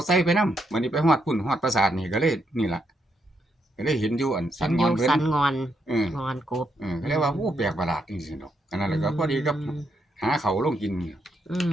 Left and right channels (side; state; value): both; normal; correlation 0.79